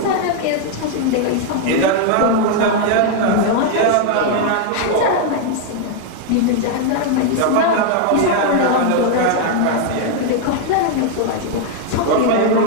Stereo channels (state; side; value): different; both; correlation 0.00